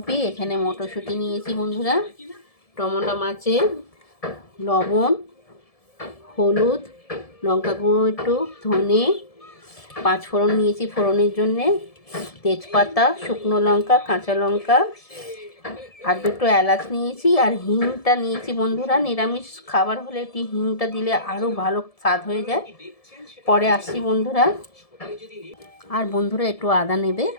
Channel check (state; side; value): late; right; 1.7 ms